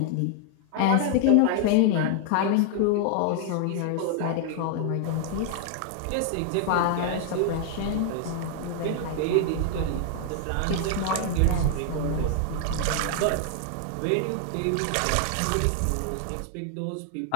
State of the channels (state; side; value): different; both; correlation 0.00